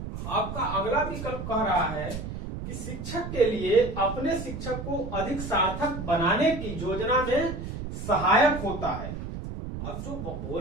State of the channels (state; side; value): noise; right; rumble, 7 dB below the sound